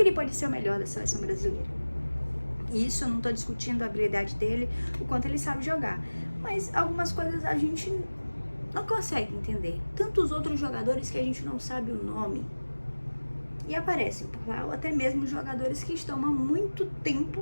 pode ser o melhor da seleção brasileira? Isso eu não estou discutindo a habilidade dele, o quanto ele sabe jogar, mas algumas coisas a gente não consegue entender. Tantos outros jogadores que a gente não sabe o nome e aparecem por lá, ou até mesmo jogadores que estão há muito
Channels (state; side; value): inverted; both; correlation -1.00